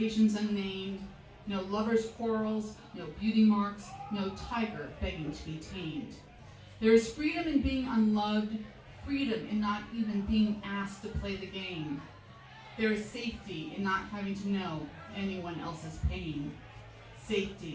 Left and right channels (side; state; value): both; identical; correlation 1.00